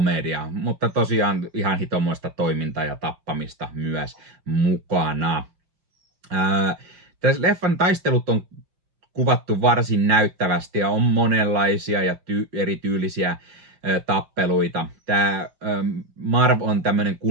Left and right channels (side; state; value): left; late; 5.6 ms